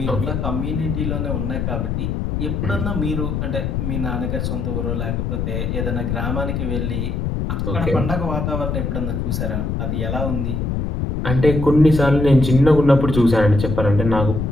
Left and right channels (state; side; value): noise; left; rumble, 1 dB below the sound